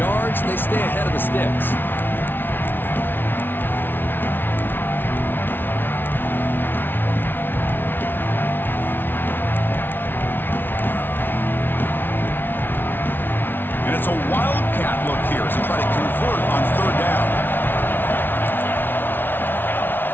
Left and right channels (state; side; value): late; right; 0.099 ms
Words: They stay ahead of the sticks. And it's a wildcat look here as they try to convert on 3rd down.